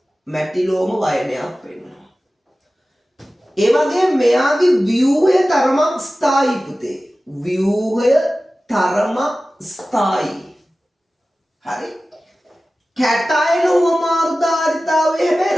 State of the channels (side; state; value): both; normal; correlation 0.96